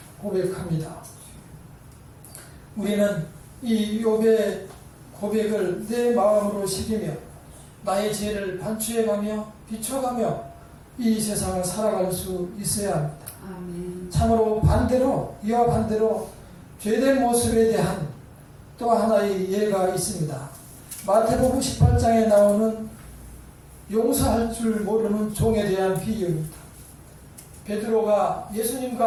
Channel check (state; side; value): identical; both; correlation 1.00